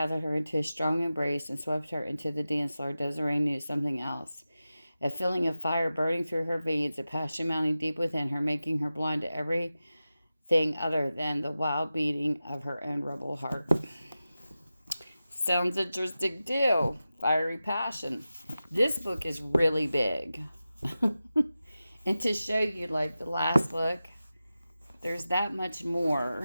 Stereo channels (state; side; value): inverted; both; correlation -0.94